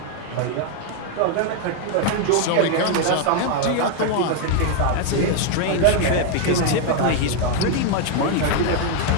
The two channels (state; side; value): different; both; correlation 0.01